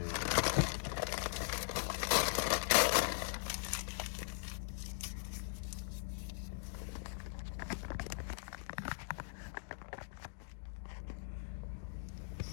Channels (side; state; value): right; silent; digital silence